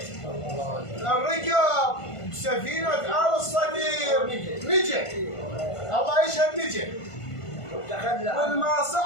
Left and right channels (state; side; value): late; right; 1.5 ms